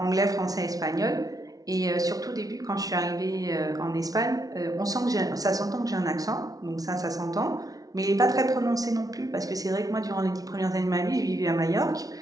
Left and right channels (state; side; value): late; left; 0.18 ms